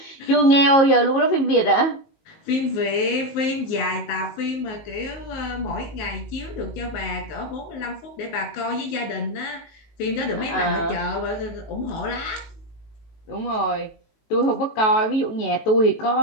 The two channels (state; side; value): late; right; 18 ms